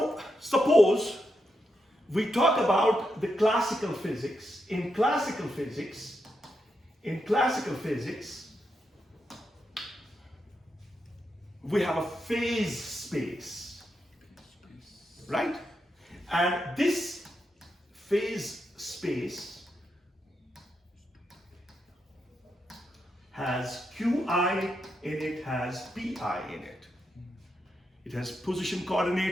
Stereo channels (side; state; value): both; normal; correlation 0.84